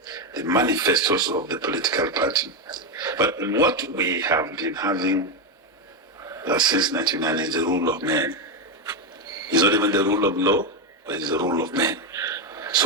the manifestos of the political party. But what we have been having since 1999 is the rule of men. It's not even the rule of law, but it's the rule of men.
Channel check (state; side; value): normal; both; correlation 0.08